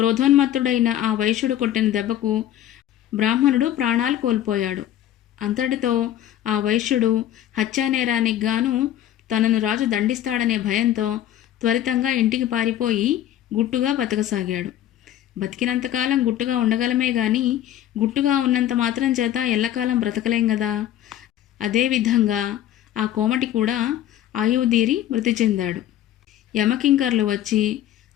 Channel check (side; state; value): right; quieter; 12.0 dB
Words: ఆ వైశ్యుడు కొట్టిన దెబ్బకు బ్రాహ్మణుడు ప్రాణాలు కోల్పోయాడు. అంతటితో ఆ వైశ్యుడు హత్యానేరానికి గాను తనను రాజు దండిస్తాడనే భయంతో త్వరితంగా ఇంటికి పారిపోయి గుట్టుగా బతకసాగాడు. బతికినంతకాలం గుట్టుగా ఉండగలమే గాని గుట్టుగా ఉన్నంత మాత్రం చేత ఎల్లకాలం బ్రతకలేం గదా. అదేవిధంగా ఆ కోమటి కూడా ఆయువుదీరి మృతి చెందాడు. యమకింకర్లు వచ్చి